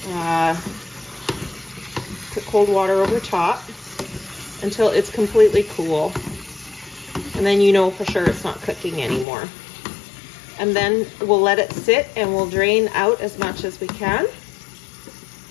put cold water over top until it's completely cool. And then you know for sure it's not cooking anymore. And then we'll let it sit and we'll drain out as much as we can.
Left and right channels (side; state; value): right; drops out; at 9.2 s